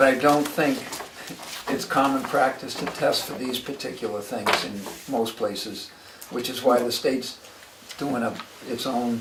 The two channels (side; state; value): both; identical; correlation 1.00